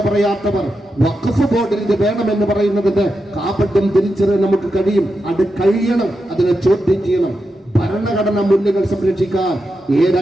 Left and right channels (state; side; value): normal; both; correlation 0.88